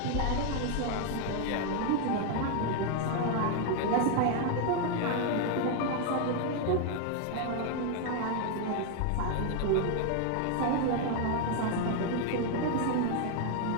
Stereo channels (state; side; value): different; both; correlation 0.00